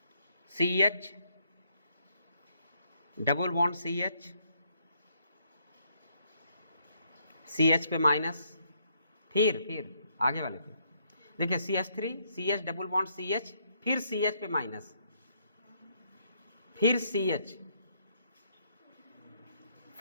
CH double bond CH, CH पे माइनस, फिर आगे वाले पे देखिए CH3 CH double bond CH, फिर CH पे माइनस, फिर CH,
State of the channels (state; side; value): inverted; both; correlation -0.72